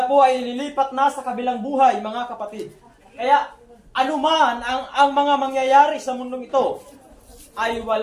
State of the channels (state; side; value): identical; both; correlation 1.00